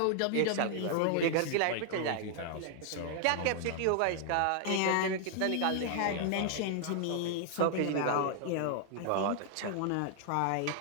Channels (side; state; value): both; different; correlation 0.00